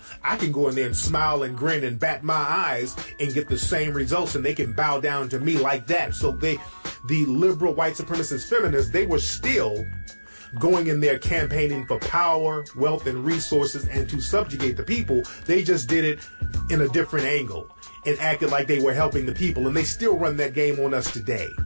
I can go in there and smile and grin and bat my eyes and get the same results, and they can bow down to me like that. So the liberal white supremacist feminists, they were still going in there campaigning for power, wealth, and resources and to subjugate the people. They just did it in a different angle and acted like they were helping the people. And they still run that game on us today.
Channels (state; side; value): inverted; both; correlation -1.00